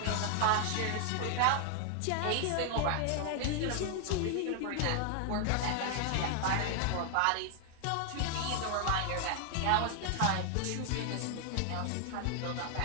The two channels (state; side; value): different; both; correlation 0.00